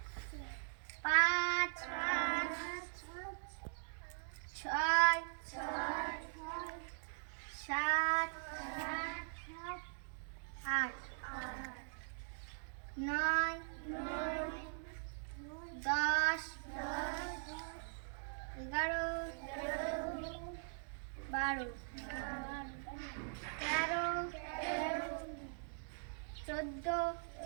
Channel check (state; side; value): silent; left; digital silence